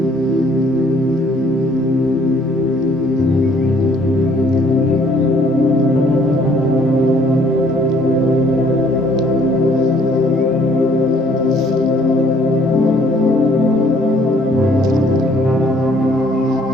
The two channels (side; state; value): both; normal; correlation 0.61